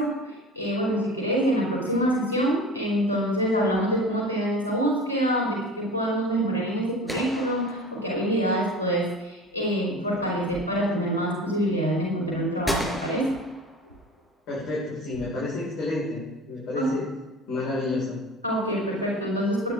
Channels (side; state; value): both; normal; correlation 0.37